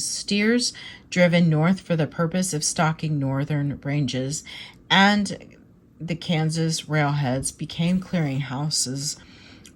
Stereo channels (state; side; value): identical; both; correlation 1.00